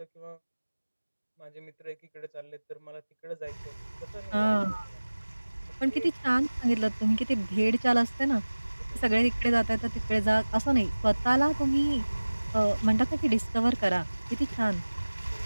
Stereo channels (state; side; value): inverted; both; correlation -1.00